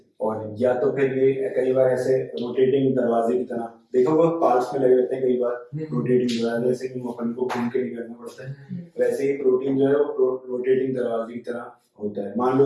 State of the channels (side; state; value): both; identical; correlation 1.00